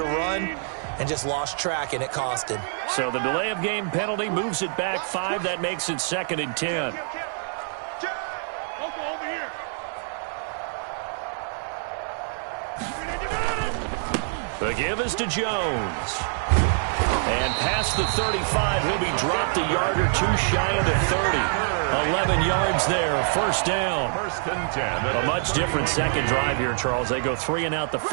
run and just lost track, and it cost him. So the delay of game penalty moves it back 5. That makes it 2nd and 10. The give is to Jones. And past the 35, he'll be dropped a yard or two shy of the 30. 11 yards there, first down. First and 10. A much different second drive here, Charles. They go 3 and out the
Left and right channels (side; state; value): left; silent; 61 dB below the other